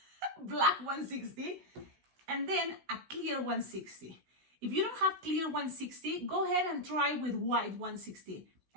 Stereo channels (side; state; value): left; late; 16 ms